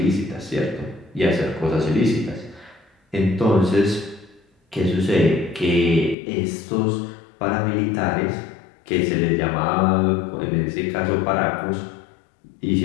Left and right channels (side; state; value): right; drops out; at 6.2 s